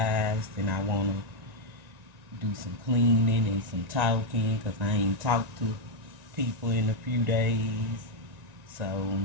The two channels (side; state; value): left; late; 1.9 ms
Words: and I wanna do some cleaning and some talking because I ain't talked to people in a few days. So,